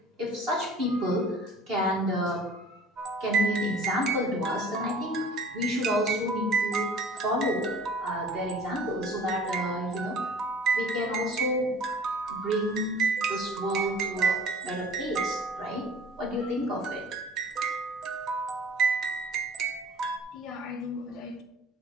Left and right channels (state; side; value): normal; both; correlation 0.48